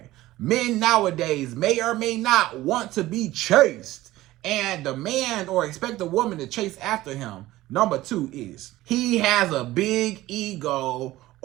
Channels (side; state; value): left; quieter; 16.6 dB